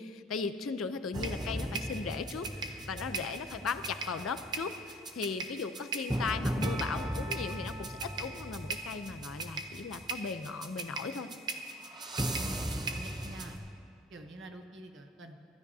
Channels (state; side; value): normal; both; correlation 0.50